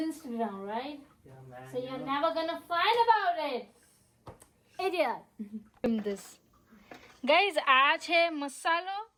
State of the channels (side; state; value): both; identical; correlation 1.00